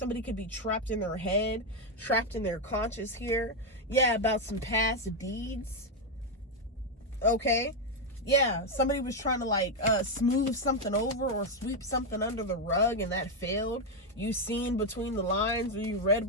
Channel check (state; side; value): normal; both; correlation 0.04